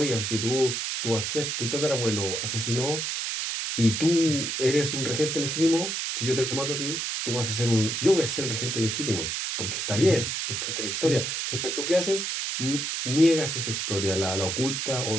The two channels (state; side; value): noise; right; hiss, 2 dB below the sound